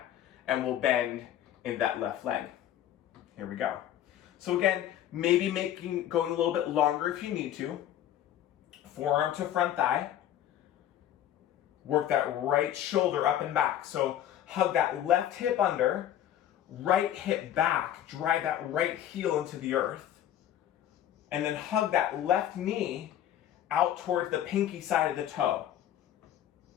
and we'll bend in that left leg. Here we go. So again, maybe going a little bit longer if you need to. Forearm to front thigh. Work that right shoulder up and back. So hug that left hip under, right hip back, drive that right heel into the earth, and then hug that left knee out towards the pinky side of the toe.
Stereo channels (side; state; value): right; quieter; 11.3 dB